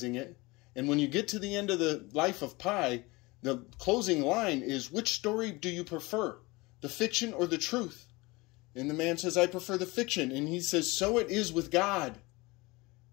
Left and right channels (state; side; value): quieter; right; 23.2 dB